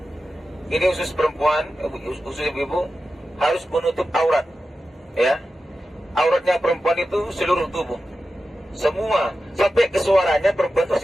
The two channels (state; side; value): normal; both; correlation 0.92